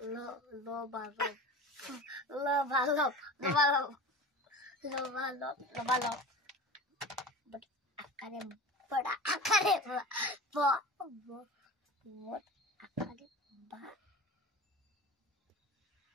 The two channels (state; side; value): normal; both; correlation 0.35